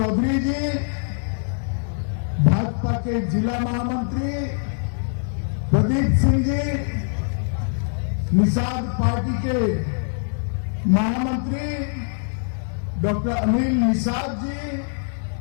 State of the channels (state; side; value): silent; right; 63 dB below the other